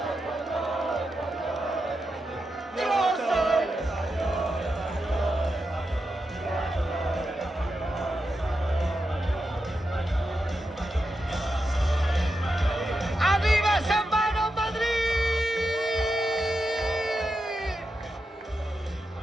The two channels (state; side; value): normal; both; correlation 0.87